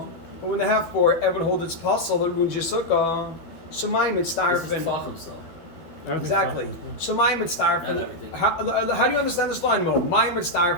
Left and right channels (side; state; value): right; late; 12 ms